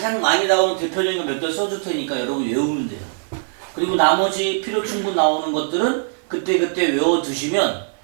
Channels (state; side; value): silent; left; digital silence